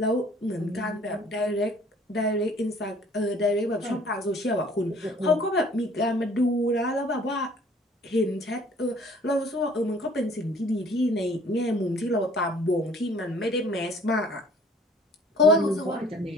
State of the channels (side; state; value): both; normal; correlation 0.55